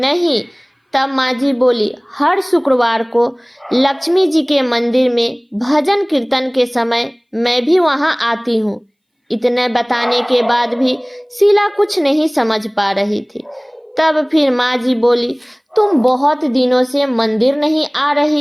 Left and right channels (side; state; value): both; identical; correlation 1.00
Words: तब माँ जी बोली, हर शुक्रवार को लक्ष्मी जी के मंदिर में भजन कीर्तन के समय मैं भी वहाँ आती हूँ। इतने बताने के बाद भी शीला कुछ नहीं समझ पा रही थी। तब फिर माँ जी बोली, तुम बहुत दिनों से मंदिर नहीं आ